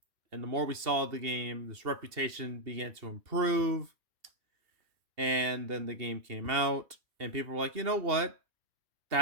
and the more we saw the game, this reputation began to improve. And then the game came out, and people were like, "You know what?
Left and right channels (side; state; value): left; late; 2.7 ms